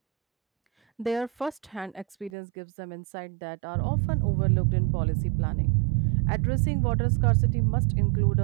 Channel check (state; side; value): drops out; left; at 2.3 s